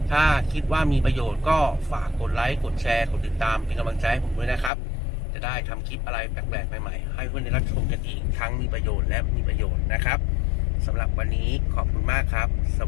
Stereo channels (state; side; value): drops out; right; at 4.7 s